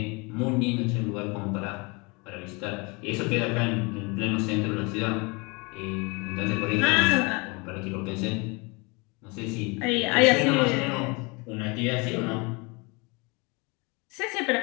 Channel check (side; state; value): right; quieter; 28.6 dB